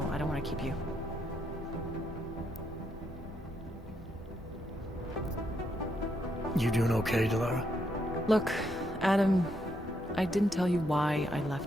I don't want to keep you. You doing okay, Delara? Look, Adam, I didn't tell you why I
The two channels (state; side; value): normal; both; correlation 0.78